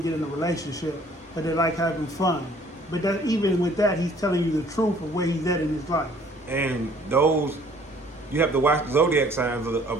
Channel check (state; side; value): normal; both; correlation 0.57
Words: get in a relationship, but they like having fun. But that, even with that, he's telling you the truth of where he's at in his life. And those, you have to watch the Zodiac signs